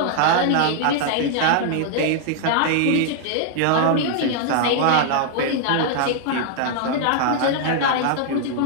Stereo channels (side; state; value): both; different; correlation -0.01